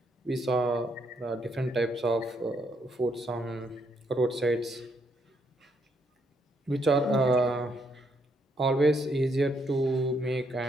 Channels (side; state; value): both; normal; correlation 0.74